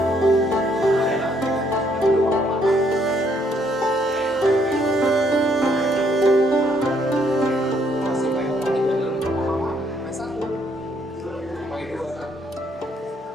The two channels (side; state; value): both; normal; correlation 0.69